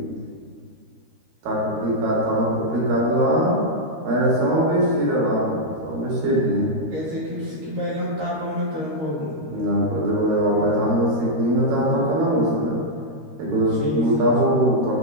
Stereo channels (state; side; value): late; left; 13 ms